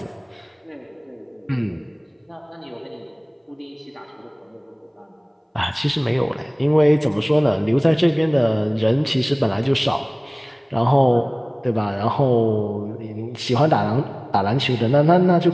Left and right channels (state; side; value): identical; both; correlation 1.00